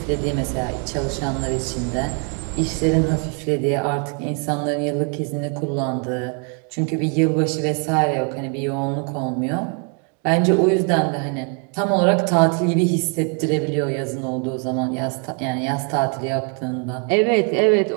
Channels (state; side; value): quieter; left; 39.1 dB